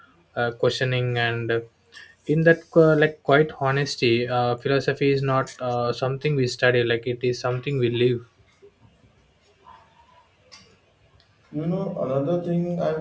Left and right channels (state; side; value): identical; both; correlation 1.00